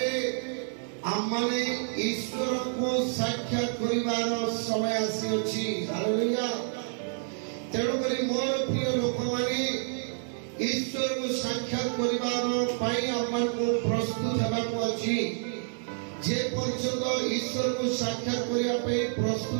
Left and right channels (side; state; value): left; silent; digital silence